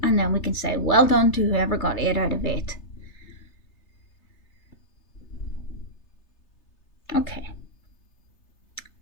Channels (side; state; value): right; late; 3.3 ms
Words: and then we can say well done to whoever got 8 out of 8. Okay.